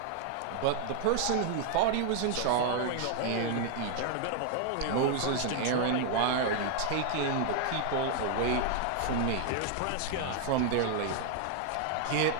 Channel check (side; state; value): both; different; correlation 0.00